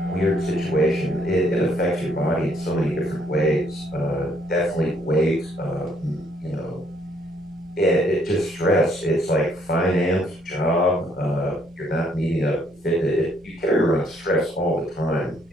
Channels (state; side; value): normal; both; correlation 0.68